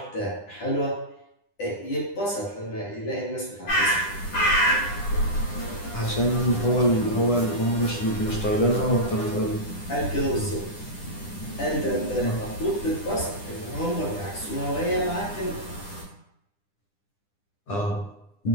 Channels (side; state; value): right; late; 9.9 ms